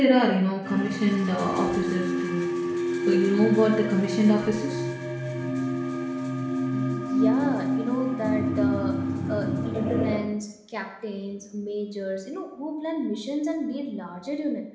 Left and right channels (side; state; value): both; identical; correlation 1.00